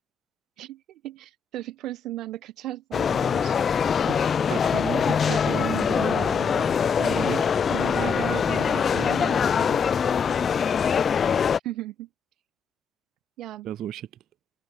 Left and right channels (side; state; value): right; quieter; 5.3 dB